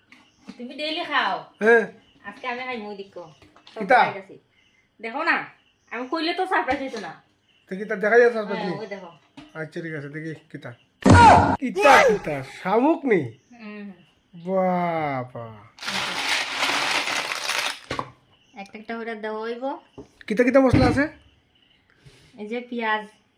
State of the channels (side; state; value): both; identical; correlation 1.00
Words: তুমি ডেইলি খাও, হ্যাঁ আজকে আমি খাই মুই দেখো কিতা? দেখো না, আমি কইলে তো সারপ্রাইজ হইতো না। তো কিতা দেখা যাচ্ছে আসবে তুমি? ওই দেখো। আচ্ছা ঠিক আছে দেখি কিতা কিতা কিতা শামুক নি? বাবা একটা একটা করে দেওয়া হইব। কিতা কিতা মশলা আছে? এই যে পেঁয়াজ,